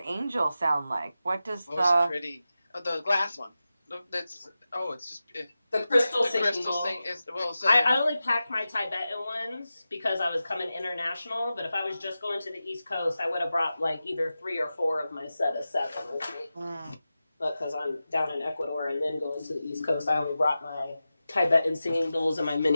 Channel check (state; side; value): inverted; both; correlation -0.93